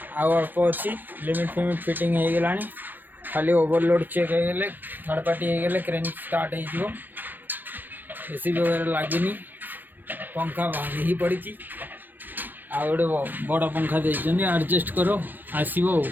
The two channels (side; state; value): left; late; 0.091 ms